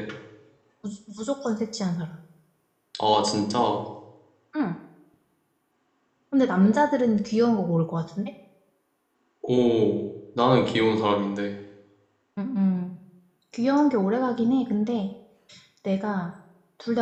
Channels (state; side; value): identical; both; correlation 1.00